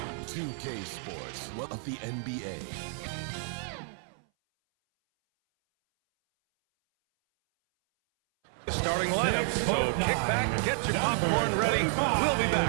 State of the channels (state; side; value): silent; left; 58 dB below the other